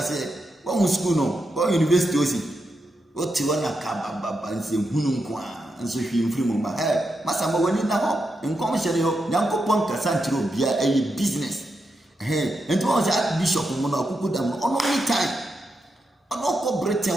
one school no one university osi o ti wana ka baba nse hunu nko a nso hwe mfiri mo ba masa mo wani na ho nkom hye yo nyankopon kasa ntiro bia business enti won se archbishop mo no akuku dam ono ni time ono ko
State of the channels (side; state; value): both; normal; correlation 0.85